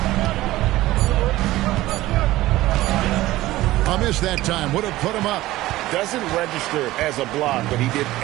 A miss that time. Would have put him up. Doesn't register as a block, but he did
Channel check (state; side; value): quieter; left; 16.8 dB